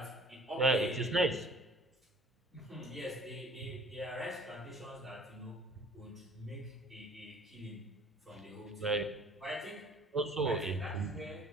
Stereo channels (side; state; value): both; normal; correlation 0.51